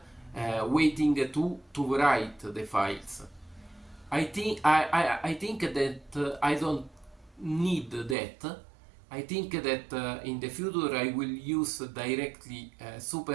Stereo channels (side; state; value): left; drops out; at 8.2 s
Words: waiting to write the files. I think that I don't need that. I think that in the future I will use directly